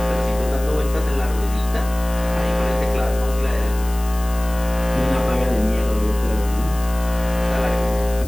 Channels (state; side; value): noise; left; hiss, 16 dB below the sound